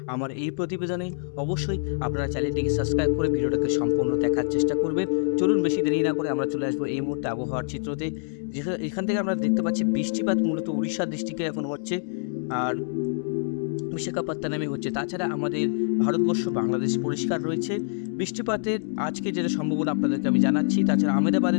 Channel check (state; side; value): silent; right; digital silence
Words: আমার এই প্রতিবেদনে। অবশ্যই আপনারা চ্যানেলটিকে সাবস্ক্রাইব করে ভিডিওটাকে সম্পূর্ণ দেখার চেষ্টা করবেন। চলুন বেশি দেরি না করে আমরা চলে আসবো এই মুহূর্তে আবহাওয়ার চিত্রতে। এখান থেকে আমরা দেখতে পাচ্ছি বৃষ্টিপাত মূলত উড়িষ্যার ডিস্ট্রিক্টে এখন হচ্ছে, আর বিশাখাপত্তনমে হচ্ছে। তাছাড়া আমাদের ভারতবর্ষ বাংলাদেশ পরিষ্কার রয়েছে। বৃষ্টিপাতের আজকে যেটা সম্ভাবনা আপনাদেরকে আমি জানাচ্ছি। তাছাড়া